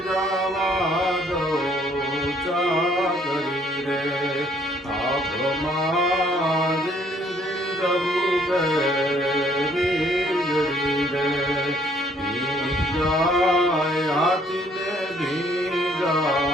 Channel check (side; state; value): both; normal; correlation 0.63